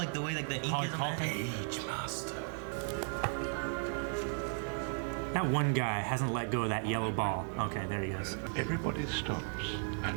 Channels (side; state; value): left; silent; 54 dB below the other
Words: the way like the ink is on that. Page Master. That one guy hasn't let go of that yellow ball. Okay, there he goes. Everybody stops